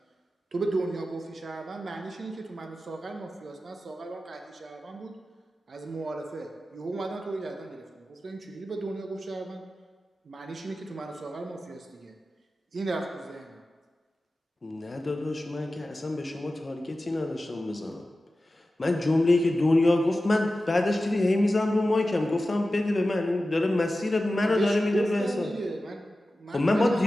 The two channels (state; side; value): normal; both; correlation 0.94